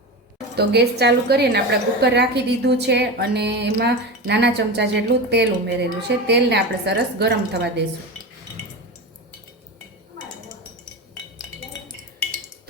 તો ગેસ ચાલુ કરીને આપણે કુકર રાખી દીધું છે અને એમાં નાના ચમચા જેટલું તેલ ઉમેરેલું છે. તેલને આપણે સરસ ગરમ થવા દઈશું.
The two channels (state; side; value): normal; both; correlation 0.24